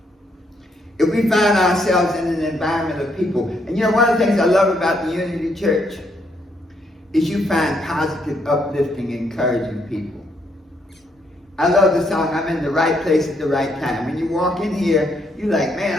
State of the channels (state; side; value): normal; both; correlation 0.74